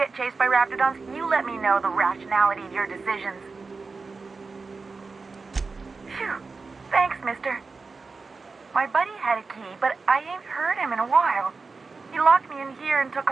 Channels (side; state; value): left; quieter; 4.3 dB